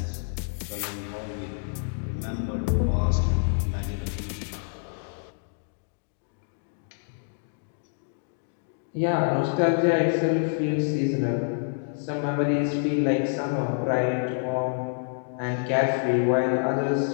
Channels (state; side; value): silent; right; digital silence